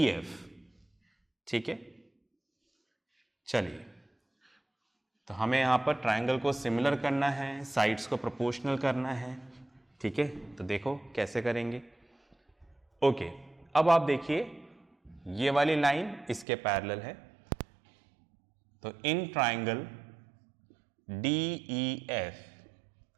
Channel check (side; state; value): left; drops out; at 16.4 s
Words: ठीक है, चलिए, तो हमें यहां पर ट्रायंगल को सिमिलर करना है, साइड्स को प्रोपोर्शनल करना है। ठीक है, तो देखो कैसे करेंगे। ओके, अब आप देखिए ये वाली लाइन इसके पैरेलल है। तो इन ट्रायंगल DEF,